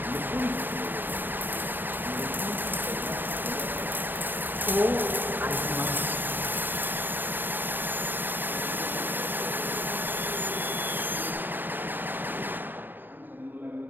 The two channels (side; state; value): left; late; 0.092 ms